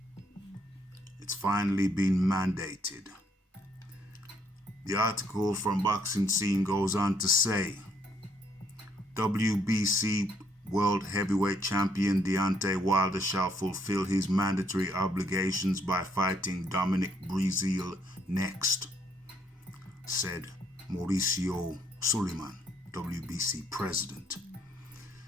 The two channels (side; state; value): both; normal; correlation 0.69